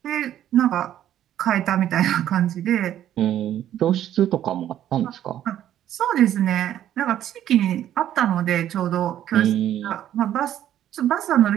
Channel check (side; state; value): left; quieter; 11.5 dB